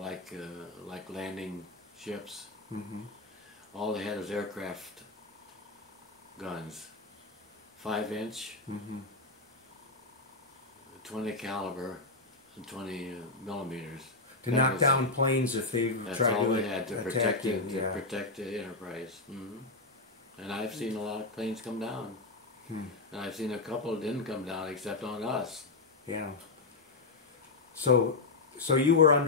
landing ships. All they had was aircraft guns, 5-inch, 20 caliber, and 20 millimeters. To knock down planes if they That's tried all to they had to attack protect you. it, to Yeah. protect the enterprise. And I've seen a lot of planes come down. And I've seen a couple that didn't come down except on us. Yeah. So you were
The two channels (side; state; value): right; quieter; 3.5 dB